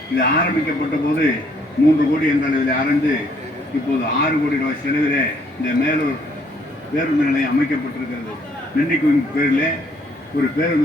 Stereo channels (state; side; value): normal; both; correlation 0.66